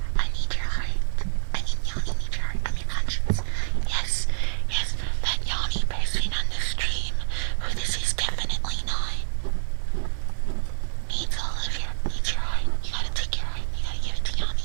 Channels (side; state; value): left; silent; 61 dB below the other